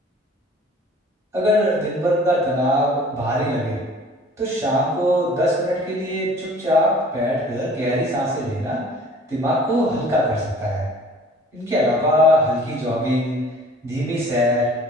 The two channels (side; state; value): both; normal; correlation 0.49